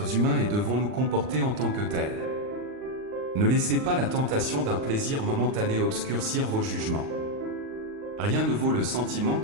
humains et devons nous comporter en tant que tels. Ne laissez pas la tentation d'un plaisir momentané obscurcir vos jugements. Rien ne vaut le sentiment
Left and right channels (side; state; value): left; late; 39 ms